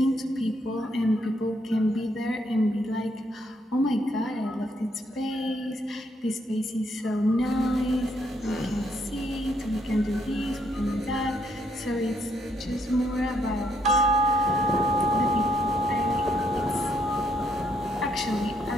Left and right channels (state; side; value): normal; both; correlation 0.73